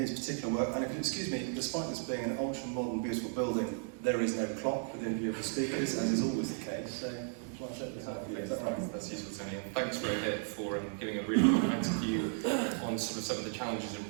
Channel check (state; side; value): silent; left; 54 dB below the other